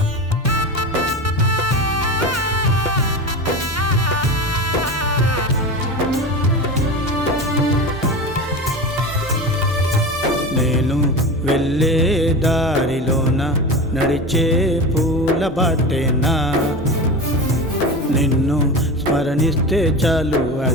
నేను వెళ్ళే దారిలోన నడిచే పూల బాటేనా, నిన్ను స్మరణిస్తే చాలు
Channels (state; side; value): normal; both; correlation 0.27